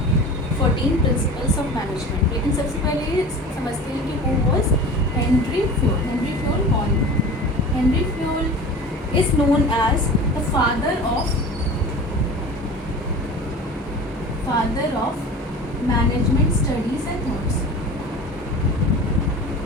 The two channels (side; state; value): both; normal; correlation 0.36